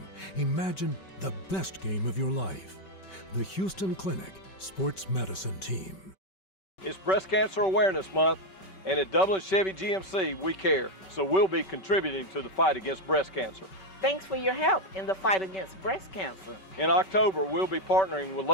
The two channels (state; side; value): late; right; 5.2 ms